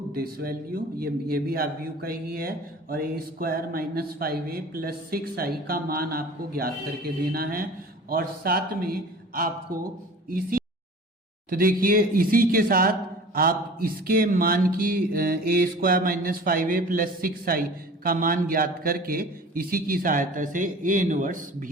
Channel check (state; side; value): normal; both; correlation 0.42